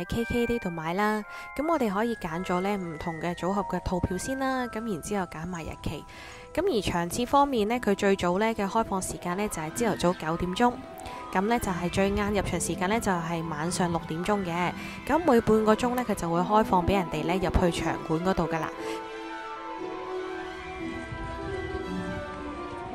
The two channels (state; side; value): identical; both; correlation 1.00